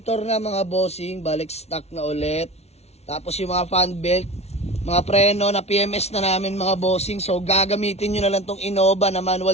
na mga bossing. Balik stock na ulit. Tapos yung mga fan belt, mga preno na PMS na namin mga bossing. So, gagamitin nyo na lang tong Innova na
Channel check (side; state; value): right; late; 0.31 ms